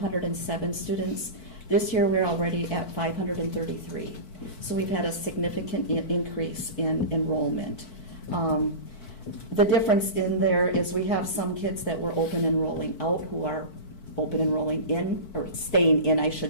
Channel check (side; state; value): right; late; 4.6 ms